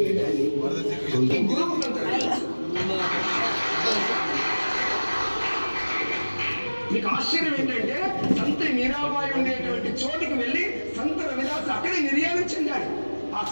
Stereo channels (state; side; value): inverted; both; correlation -1.00